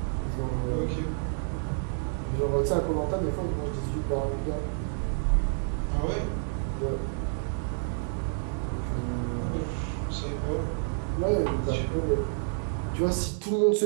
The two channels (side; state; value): left; silent; digital silence